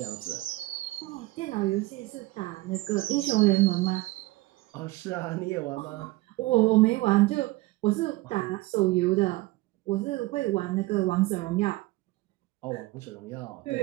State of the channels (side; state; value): left; quieter; 20.0 dB